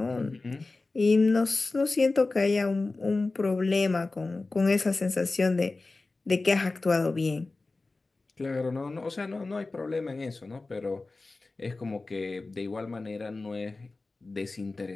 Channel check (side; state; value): right; quieter; 3.4 dB